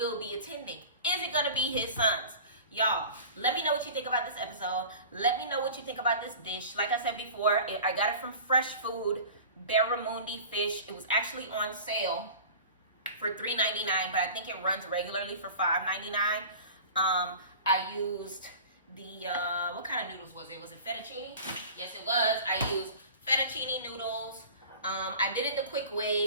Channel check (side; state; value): both; inverted; correlation -0.39